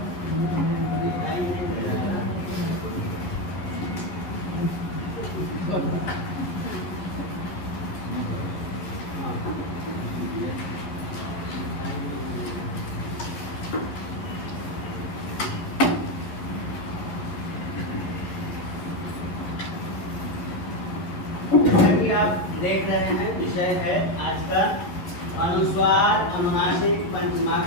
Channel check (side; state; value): right; late; 11 ms